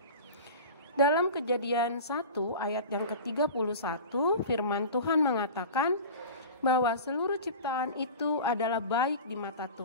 Dalam Kejadian 1 ayat yang ke-31, firman Tuhan mengatakan bahwa seluruh ciptaan itu adalah baik di mata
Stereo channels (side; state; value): both; inverted; correlation -0.34